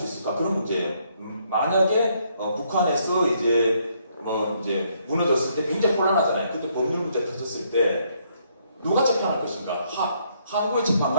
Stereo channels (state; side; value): inverted; both; correlation -0.70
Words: 있을까? 그런 문제예요. 만약에, 북한에서 이제 무너졌을 때 굉장히 혼란하잖아요. 그때 법률 문제 터졌을 때, 누가 재판할 것인가? 한국의